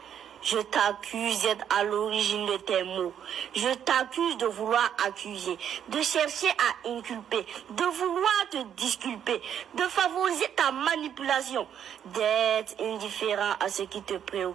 Je t'accuse d'être à l'origine de tes mots. Je t'accuse de vouloir accuser, de chercher à inculper, de vouloir te disculper, de favoriser ta manipulation, d'être indifférent à ce qui te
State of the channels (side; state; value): left; quieter; 9.1 dB